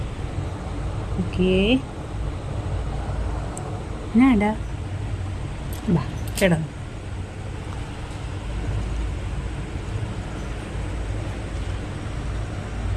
ഓക്കേ എന്നാടാ, ബാ കിടന്നു.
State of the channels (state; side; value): identical; both; correlation 1.00